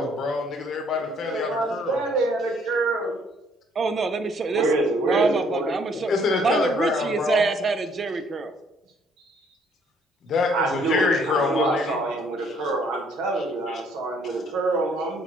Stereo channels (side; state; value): both; normal; correlation 0.64